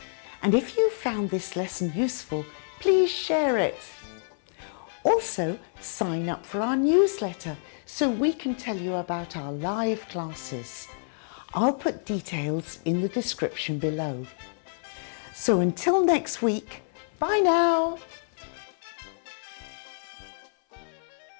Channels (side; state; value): right; silent; 56 dB below the other